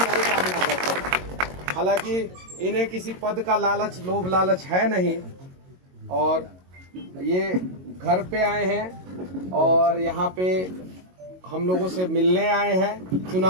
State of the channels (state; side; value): late; left; 22 ms